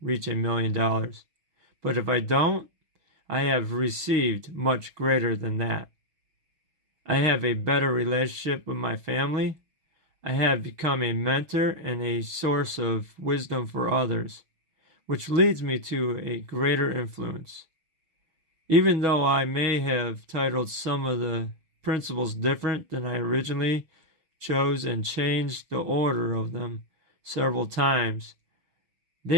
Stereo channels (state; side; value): late; left; 6.2 ms